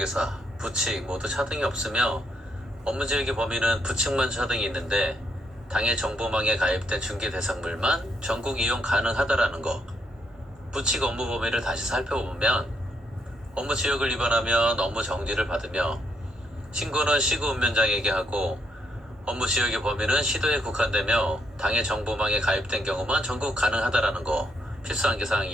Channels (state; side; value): normal; both; correlation 0.76